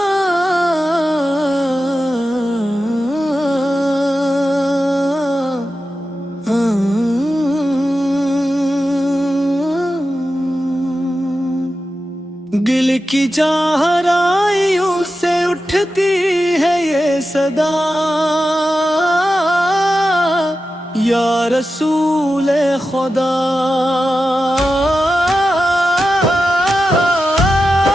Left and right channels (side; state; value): both; normal; correlation 0.91